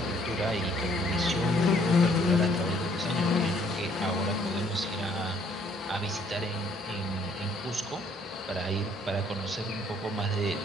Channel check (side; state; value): both; normal; correlation 0.64